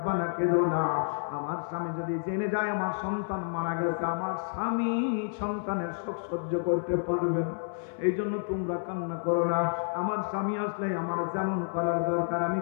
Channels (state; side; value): silent; right; 58 dB below the other